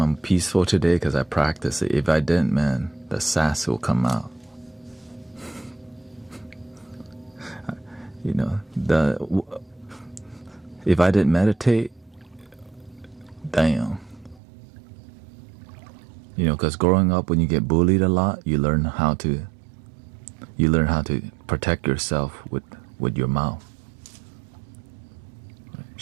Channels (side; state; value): left; drops out; at 14.4 s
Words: I'm peaceful today because I practice it. If I didn't, man, the sass will come out. You know, if I didn't meditate, damn. You know, because growing up, when you get bullied a lot, you learn how to protect yourself with your mouth.